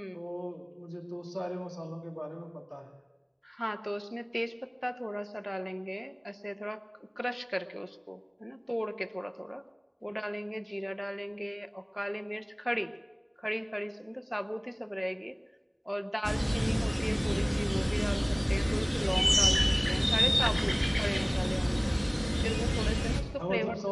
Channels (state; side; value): identical; both; correlation 1.00